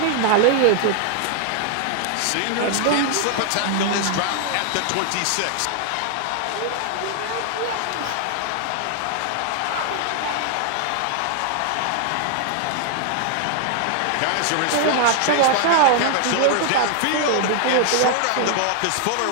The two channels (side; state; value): both; different; correlation 0.00